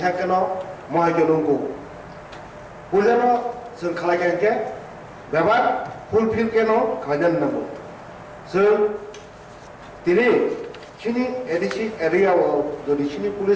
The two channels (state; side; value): identical; both; correlation 1.00